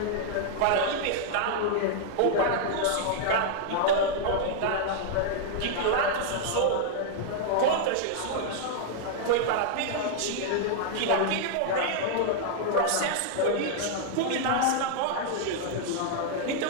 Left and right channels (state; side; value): different; both; correlation -0.01